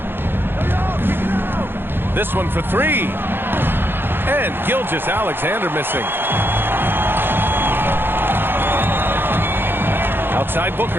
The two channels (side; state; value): left; late; 0.10 ms